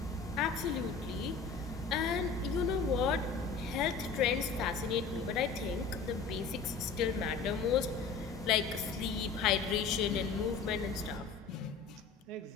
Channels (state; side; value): quieter; right; 5.3 dB